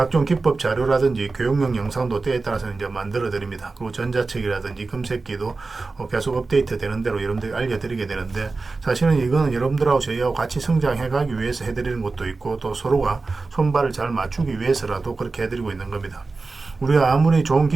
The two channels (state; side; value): quieter; left; 3.8 dB